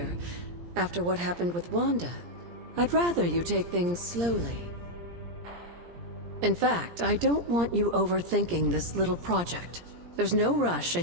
After what happened with Wanda, I'd rather you take things slowly. In fact, I don't want you overthinking this little project. There's no rush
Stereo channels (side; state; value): left; late; 17 ms